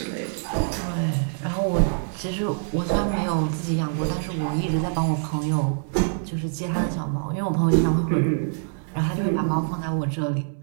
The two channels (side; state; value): left; silent; digital silence